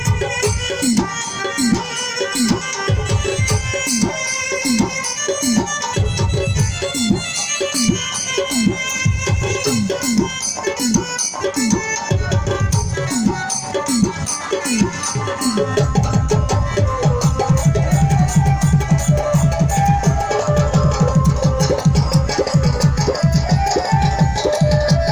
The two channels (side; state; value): both; identical; correlation 1.00